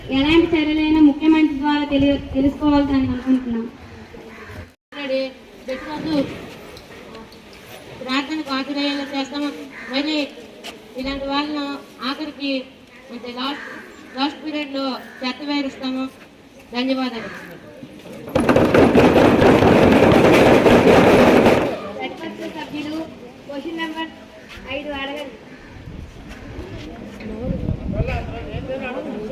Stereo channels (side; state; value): both; identical; correlation 1.00